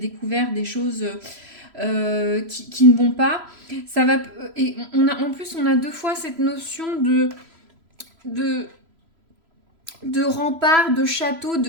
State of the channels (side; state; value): left; late; 3.0 ms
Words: des choses qui ne vont pas. Ça va, et en plus, on a deux fois cette notion de, de rempart, de château,